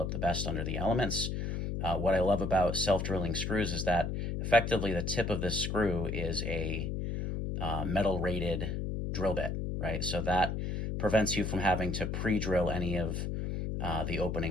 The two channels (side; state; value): left; noise; hum, 2 dB below the sound